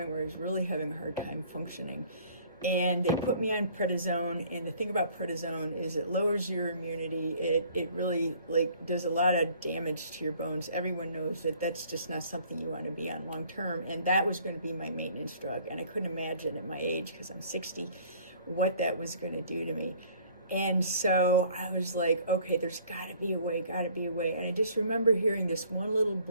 where I was really having a hard time functioning. And they put me on prednisone, and the thing about prednisone is it lowers your immunity. It really does a lot of damage to your bones. Everyone knows that that's just not something you want to be on long term, and that was going to be my maintenance drug. And I couldn't imagine at my age, because I'm 60, what that was going to do to me. And so I was like, okay, there's got to be a way. And I just remember hearing this one little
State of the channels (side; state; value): both; inverted; correlation -0.55